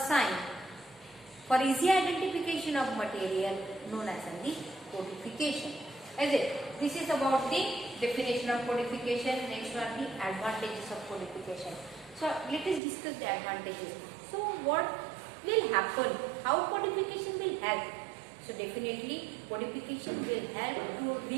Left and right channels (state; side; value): drops out; left; at 12.8 s